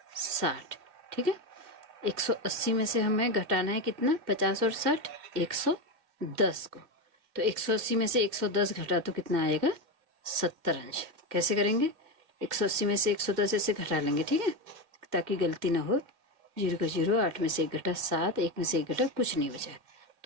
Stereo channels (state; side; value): late; left; 1.9 ms